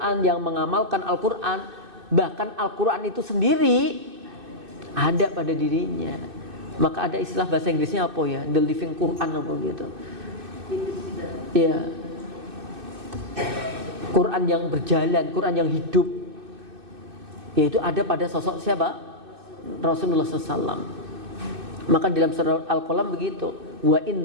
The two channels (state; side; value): late; left; 2.6 ms